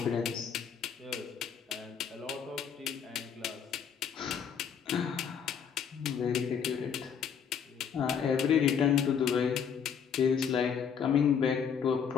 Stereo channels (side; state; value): right; quieter; 7.4 dB